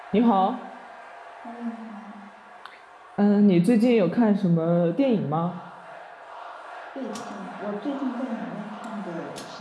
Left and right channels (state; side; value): identical; both; correlation 1.00